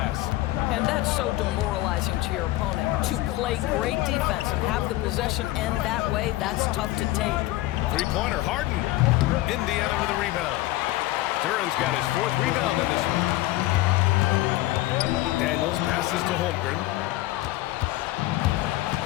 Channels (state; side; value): quieter; right; 17.3 dB